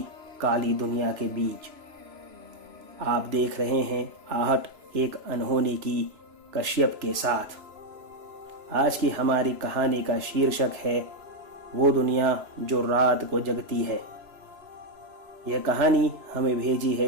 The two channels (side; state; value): left; late; 3.0 ms